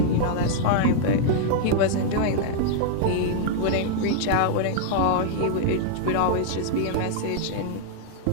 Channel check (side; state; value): both; different; correlation -0.01